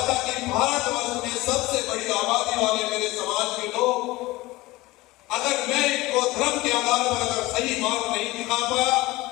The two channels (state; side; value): quieter; right; 19.9 dB